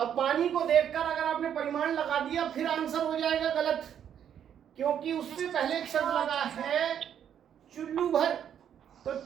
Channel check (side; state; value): left; quieter; 9.1 dB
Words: पानी को देखकर अगर आपने परिमाण लगा दिया फिर आंसर हो जाएगा गलत, क्योंकि उससे पहले एक शब्द लगा है चुल्लू भर। तो